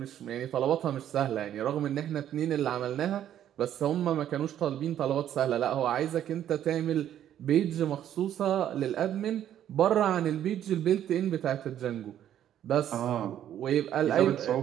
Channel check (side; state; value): left; quieter; 10.8 dB